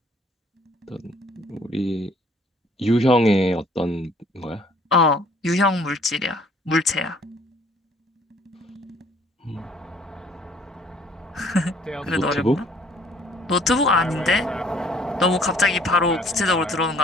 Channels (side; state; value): both; normal; correlation 0.58